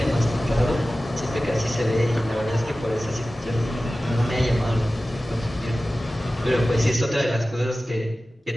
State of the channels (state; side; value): normal; both; correlation 0.96